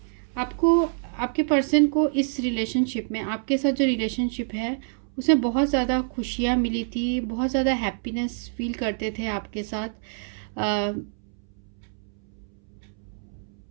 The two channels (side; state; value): left; silent; 61 dB below the other